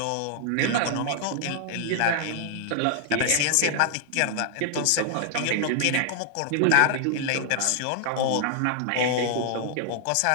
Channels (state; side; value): different; both; correlation -0.01